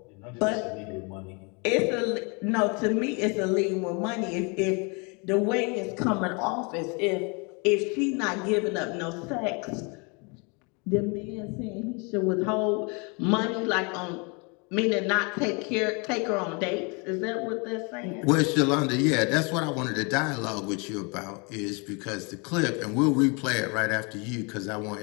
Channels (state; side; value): quieter; right; 32.2 dB